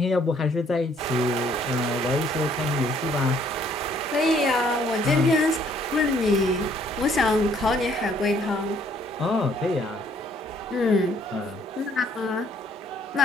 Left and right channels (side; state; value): both; normal; correlation 0.64